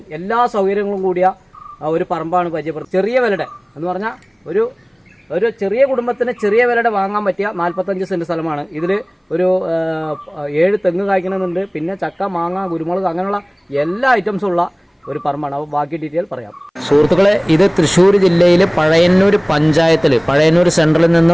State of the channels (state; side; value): identical; both; correlation 1.00